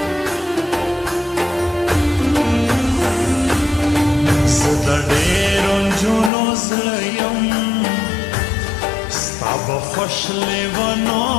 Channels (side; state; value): right; drops out; at 6.3 s